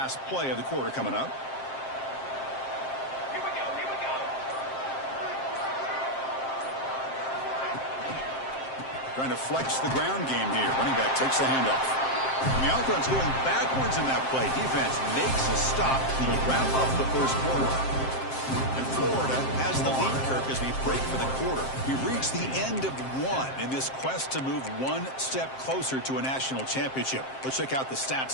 play of the quarter coming up. Here we go, here we go. Trying to flex the ground game here. Running back takes the handoff. And the offense going backwards in that play. Defense makes a stop to wrap up the 1st quarter. And Florida has the lead, Kirk, as we break for the quarter. We reach the end of 1 in this quest to move 1 step closer to a national championship. Let's check out the stats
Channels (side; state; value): right; late; 7.6 ms